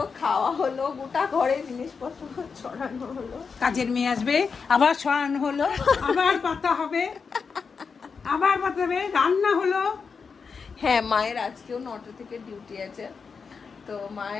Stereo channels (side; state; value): right; quieter; 5.4 dB